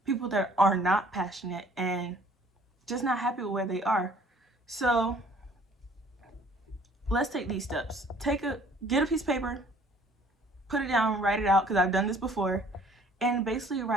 people that are not passionate and just not happy with where they are. So let's take these steps. Get a piece of paper, put it down, write it out, because I've done this before, and basically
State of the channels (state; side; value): normal; both; correlation 0.56